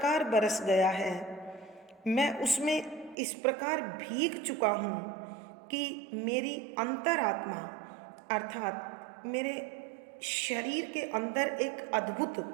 बरस गया है, मैं उसमें इस प्रकार भीग चुका हूँ कि मेरी अंतरात्मा अर्थात मेरे शरीर के अंदर एक अद्भुत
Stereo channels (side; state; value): left; drops out; at 3.2 s